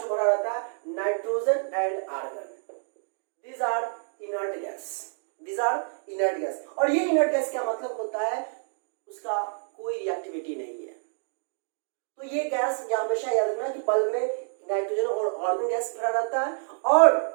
जो भरा रहता है nitrogen and argon. These are inert gas. These are inert gas. और ये inert gas क्या मतलब होता है, उसका कोई रिएक्टिविटी नहीं है। तो ये गैस या हमेशा याद रखना कि बल्ब में नाइट्रोजन और आर्गन गैस भरा रहता है,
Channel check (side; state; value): left; silent; digital silence